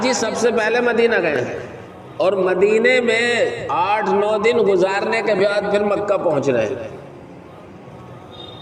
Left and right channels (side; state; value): both; identical; correlation 1.00